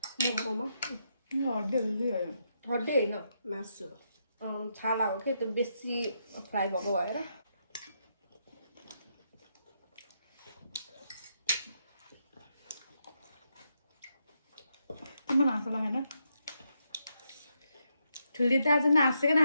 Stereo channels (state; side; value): inverted; both; correlation -0.80